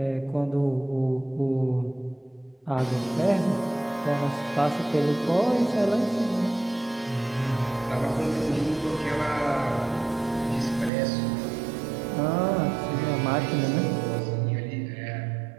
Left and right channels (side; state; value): left; drops out; at 10.9 s